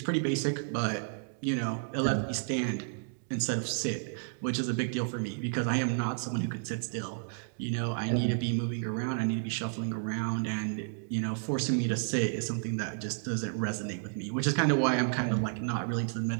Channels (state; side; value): silent; left; digital silence